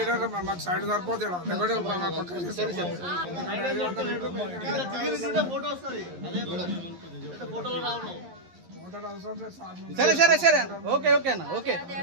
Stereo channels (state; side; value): late; left; 11 ms